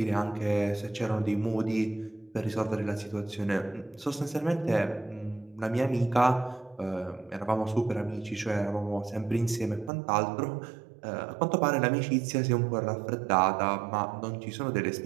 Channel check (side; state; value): left; drops out; at 9.9 s